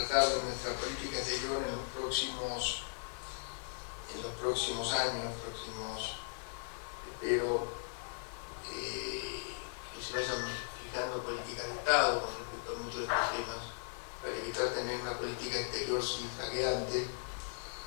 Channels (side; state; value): right; silent; digital silence